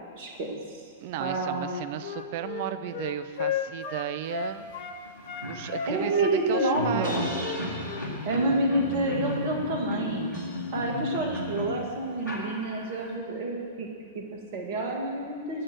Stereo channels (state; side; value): inverted; both; correlation -0.33